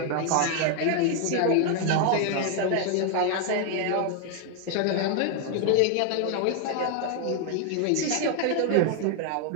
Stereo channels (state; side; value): different; both; correlation 0.00